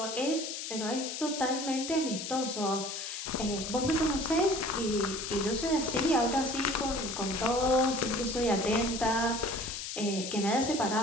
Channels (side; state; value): left; noise; hiss, 6 dB below the sound